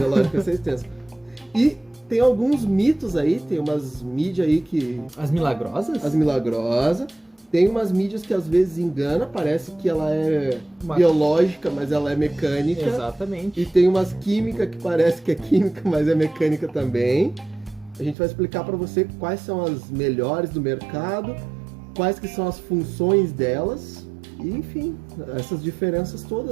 vai ser extenso. E tem alguns mitos aí, tem umas mídias aí que... As milagrosas? As milagrosas. Tem umas mídias que às vezes engana, parece que ela é biológica, mas ela é mecânica. Exatamente. E tem umas químicas que parece que é química, mas é mecânica também. A gente vai explicar para você quais são as melhores do mercado, quais que são as funções delas, e enfim, essas diferenças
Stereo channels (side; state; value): left; drops out; at 18.2 s